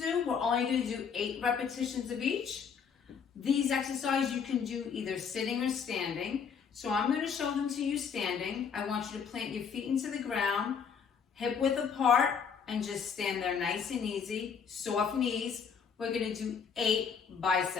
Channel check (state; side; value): quieter; right; 6.6 dB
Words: We're only going to do 8 repetitions of each. These exercises you can do either sitting or standing. So I'm going to show them to you standing. I want you to plant your feet into the ground, hip width apart, and just stand there nice and easy, soft knees. We're going to do 8